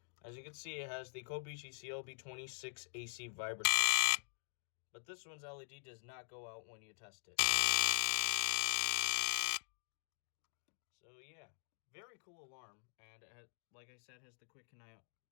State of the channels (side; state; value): right; silent; digital silence